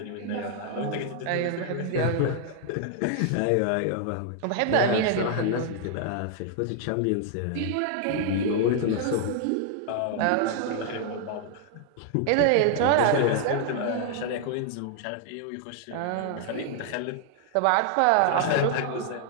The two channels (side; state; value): both; different; correlation 0.00